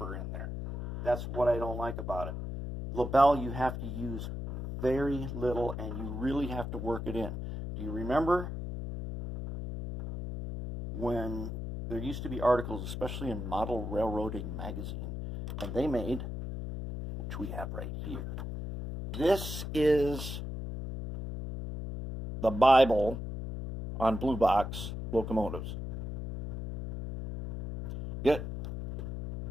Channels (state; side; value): noise; left; hum, 6 dB below the sound